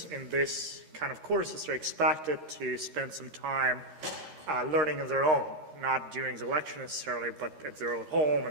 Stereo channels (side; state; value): left; late; 13 ms